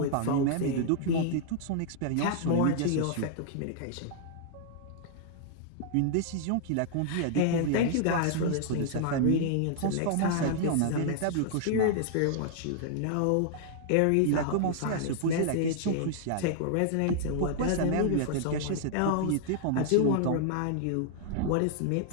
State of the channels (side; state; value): both; different; correlation -0.01